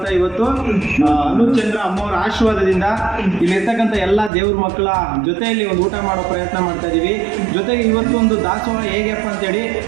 ಇವತ್ತು ಅನುಚಂದ್ರ ಅಮ್ಮವ್ರ ಆಶೀರ್ವಾದದಿಂದ ಇಲ್ಲಿರ್ತಕ್ಕಂಥ ಎಲ್ಲ ದೇವ್ರ ಮಕ್ಕಳ ಜೊತೆಯಲ್ಲಿ ಒಂದು ಊಟ ಮಾಡೋ ಪ್ರಯತ್ನ ಮಾಡ್ತಾ ಇದ್ದೀವಿ. ಜೊತೆಗೆ ಇವತ್ತು ಒಂದು ದಾಸೋಹ ಹೇಗಪ್ಪ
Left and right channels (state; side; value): drops out; left; at 4.3 s